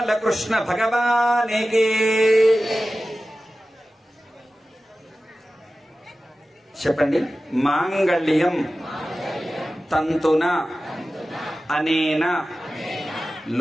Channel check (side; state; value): both; normal; correlation 0.95